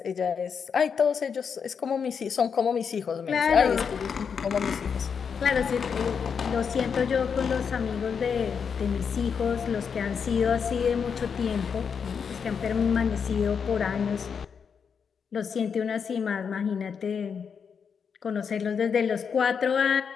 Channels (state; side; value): quieter; right; 6.5 dB